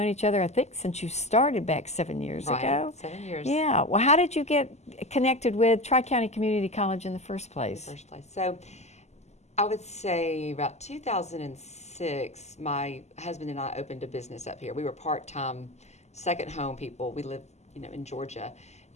each other, I think, since you started back 7 years ago. 7 years. Yeah. Well, how did you get connected with Tri-County Community College in the first place? So I would say about 2006, my husband and I opened a business up here. We were part-time second home people. We lived, in Georgia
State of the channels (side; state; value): right; late; 0.33 ms